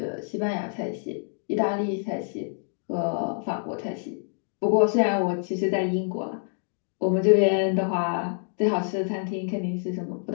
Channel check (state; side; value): silent; right; 60 dB below the other